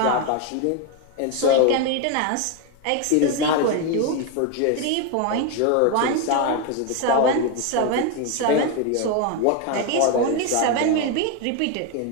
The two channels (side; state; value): both; different; correlation 0.02